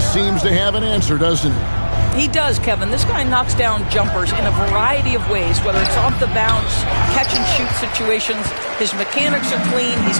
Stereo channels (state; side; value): inverted; both; correlation -1.00